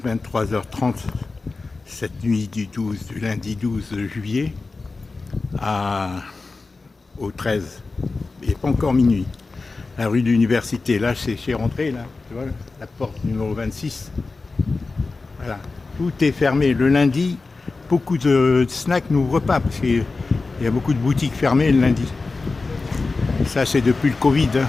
23h30 cette nuit du lundi 12 juillet au 13. Il n'est pas encore minuit. La rue de l'Université, là c'est rentré, là, tu vois, la porte numéro 26. Voilà, tout est fermé. Le lundi, beaucoup de snacks n'ouvrent pas parce qu'il y a beaucoup de boutiques fermées le lundi. Ça c'est depuis le Covid, hein,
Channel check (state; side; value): quieter; right; 3.8 dB